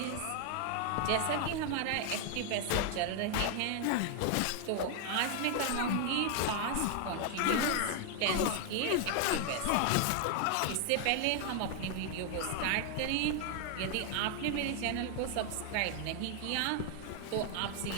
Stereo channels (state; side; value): different; both; correlation 0.00